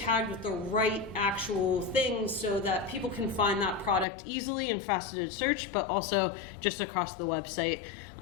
with the right actual things so that people can find that product easily in faceted search, but also just across the website.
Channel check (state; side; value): drops out; right; at 4.0 s